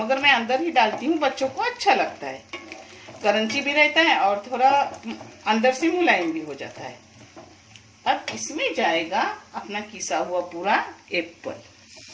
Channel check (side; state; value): both; identical; correlation 1.00